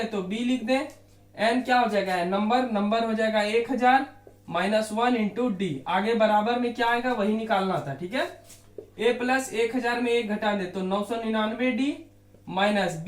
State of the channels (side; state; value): both; identical; correlation 1.00